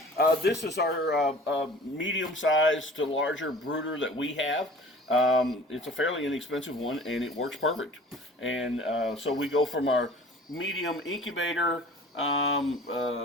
This is our medium-sized to larger brooder that we have. It's a fairly inexpensive one and it works perfect. And so we go from our medium incubator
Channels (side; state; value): both; normal; correlation 0.45